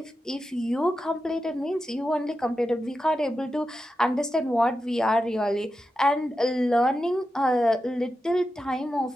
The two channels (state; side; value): normal; both; correlation 0.90